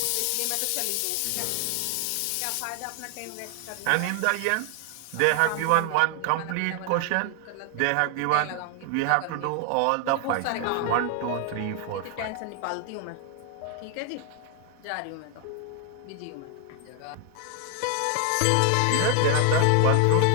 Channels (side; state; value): both; different; correlation 0.00